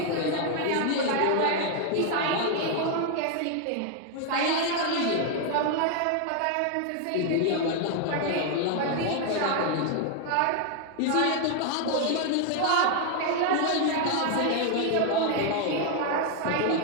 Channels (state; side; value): different; both; correlation 0.01